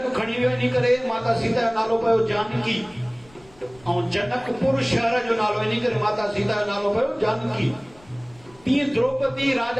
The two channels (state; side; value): noise; left; rumble, 27 dB below the sound